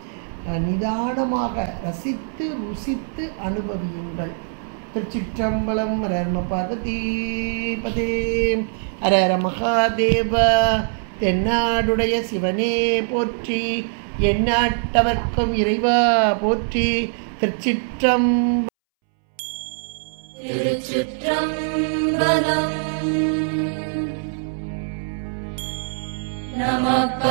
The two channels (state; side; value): silent; left; 64 dB below the other